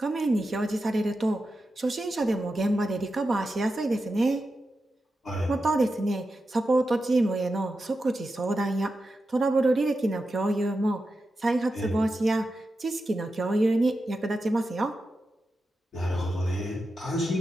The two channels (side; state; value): both; normal; correlation 0.90